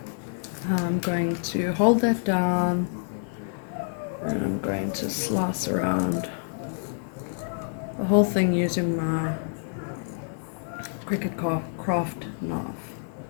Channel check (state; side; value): silent; right; digital silence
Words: I'm going to hold that down, and I'm going to slice around the whole thing using my Cricut Craft knife.